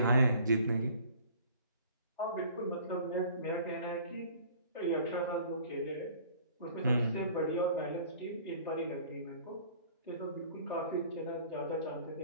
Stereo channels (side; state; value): both; inverted; correlation -0.50